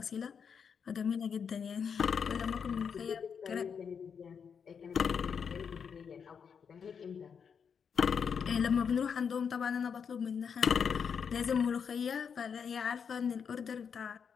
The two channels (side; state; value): right; quieter; 6.7 dB